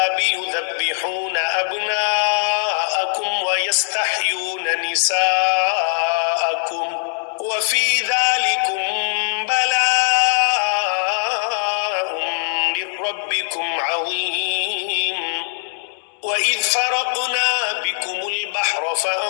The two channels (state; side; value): silent; right; digital silence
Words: يذبحون أبناءكم ويستحيون نساءكم وفي ذلكم بلاء من ربكم عظيم وَإِذْ فَرَقْنَا بِكُمُ الْبَحْرَ